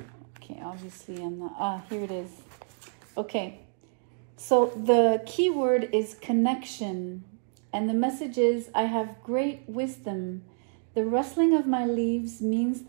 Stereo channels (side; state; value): left; silent; digital silence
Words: Okay, obviously I'm not, here it is. Okay, so the key word is connection. And the message is, I have great wisdom. The rustling of my leaves means